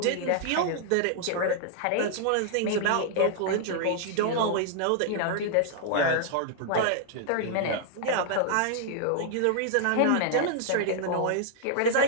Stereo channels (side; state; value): both; different; correlation 0.00